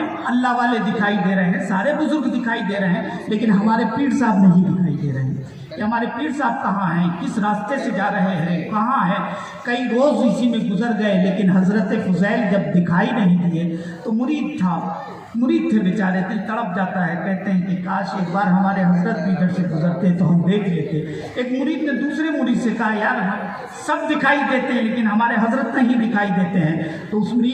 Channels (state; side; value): identical; both; correlation 1.00